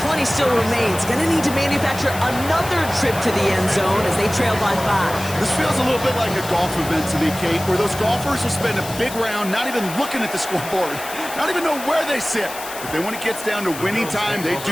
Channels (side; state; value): left; noise; hiss, 12 dB below the sound